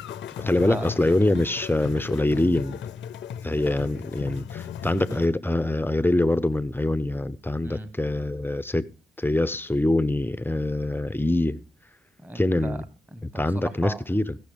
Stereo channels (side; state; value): both; normal; correlation 0.93